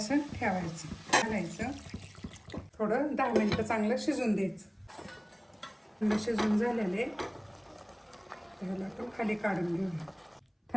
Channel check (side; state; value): both; identical; correlation 1.00